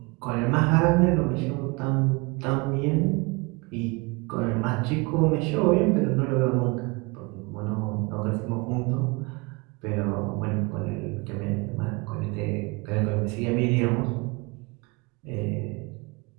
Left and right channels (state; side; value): quieter; left; 27.4 dB